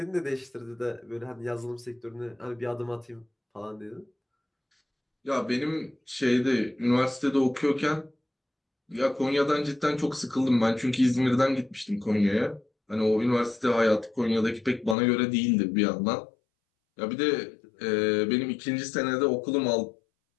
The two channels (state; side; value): drops out; right; at 15.0 s